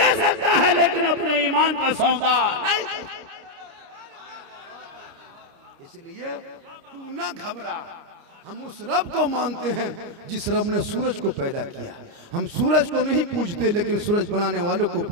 सकता है लेकिन अपने ईमान का सौदा नहीं। इसलिए तू ना घबरा, हम उस रब को मानते हैं जिस रब ने सूरज को पैदा किया। हम सूरज को नहीं पूजते लेकिन सूरज बनाने वालों को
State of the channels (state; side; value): late; left; 29 ms